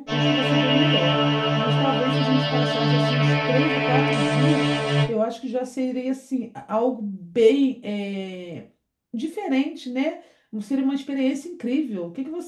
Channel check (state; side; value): identical; both; correlation 1.00